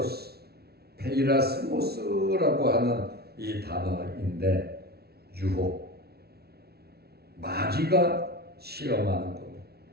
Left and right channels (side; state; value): left; late; 0.46 ms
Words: 페이라스모스라고 하는 이 단어인데 유혹, 마귀가 시험하는 겁니다.